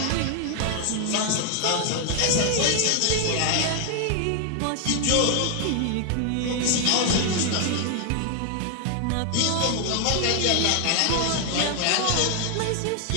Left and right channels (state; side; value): different; both; correlation 0.00